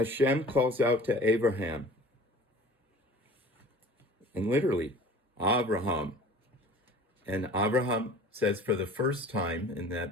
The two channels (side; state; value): both; normal; correlation 0.44